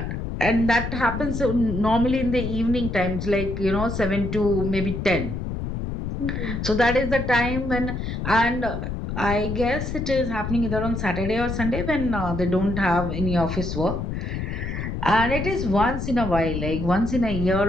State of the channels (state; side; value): noise; left; rumble, 4 dB below the sound